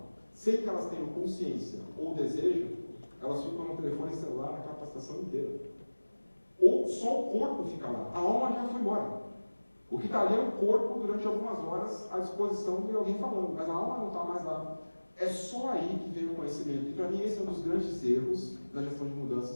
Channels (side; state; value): both; inverted; correlation -1.00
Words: sem que elas tenham consciência ou desejo, elas ficam no telefone celular a capacitação inteira. Ou só o corpo fica lá, a alma já foi embora. O que está ali é o corpo durante algumas horas à disposição de alguém falando, mas a alma não está mais lá. É só aí que vem o conhecimento. E para mim esse é um dos grandes erros na gestão de